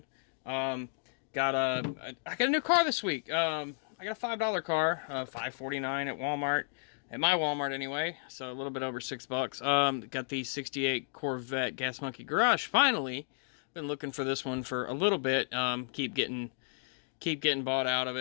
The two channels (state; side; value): silent; right; digital silence